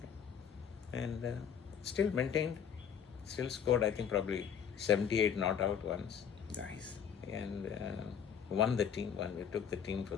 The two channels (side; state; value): right; quieter; 7.9 dB